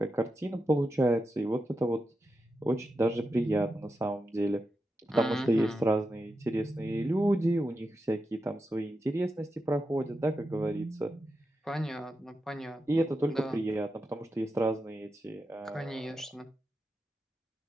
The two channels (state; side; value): normal; both; correlation 0.88